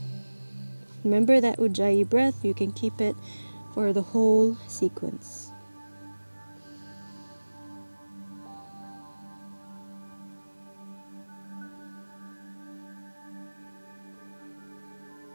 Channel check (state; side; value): inverted; both; correlation -1.00